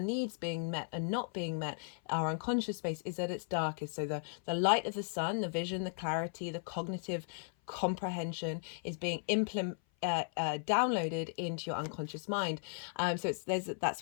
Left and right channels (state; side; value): silent; right; 54 dB below the other